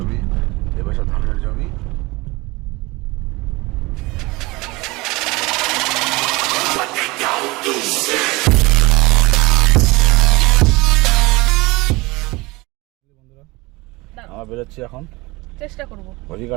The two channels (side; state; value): left; quieter; 23.0 dB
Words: এপাশে ধানের জমি। আমরা বেরোচ্ছি এখন, চেষ্টা করব।